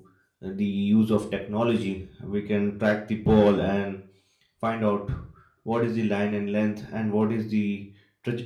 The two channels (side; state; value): both; identical; correlation 1.00